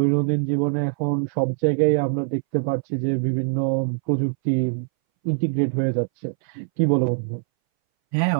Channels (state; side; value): silent; left; 61 dB below the other